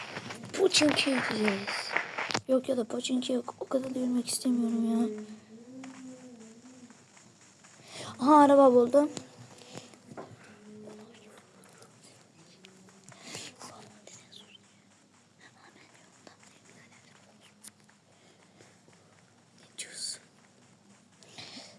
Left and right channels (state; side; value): identical; both; correlation 1.00